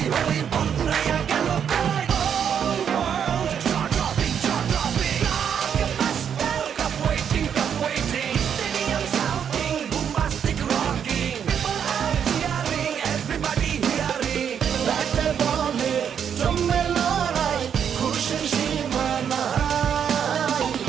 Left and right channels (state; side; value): quieter; left; 8.1 dB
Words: hoi, banguraya gelo koi. Whole world jaw-dropping. Blockbuster, cup waiting. Stadium shouting, bombastic rocking. People are cheering, everybody hearing. ব্যাটে বলে জমে লড়াই, খুশির সীমা নাই।